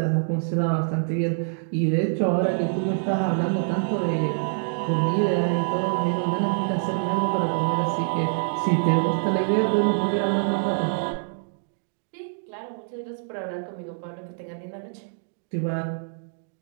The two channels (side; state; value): left; silent; digital silence